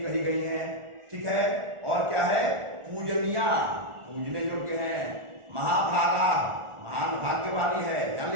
कही गई हैं। ठीक है, और क्या है? पूजनिया, पूजने योग्य है। महाभागा, महान भाग्य वाली है, जान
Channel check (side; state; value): left; late; 1.4 ms